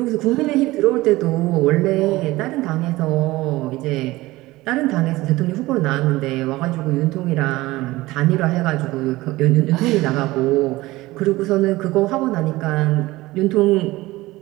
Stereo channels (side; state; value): left; quieter; 18.9 dB